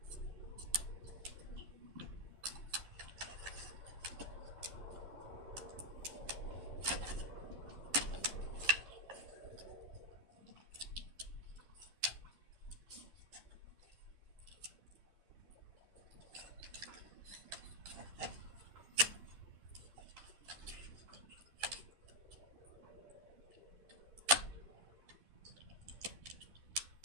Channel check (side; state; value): left; late; 11 ms